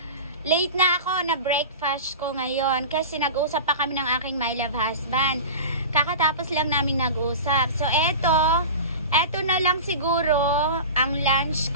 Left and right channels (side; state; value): both; inverted; correlation -0.31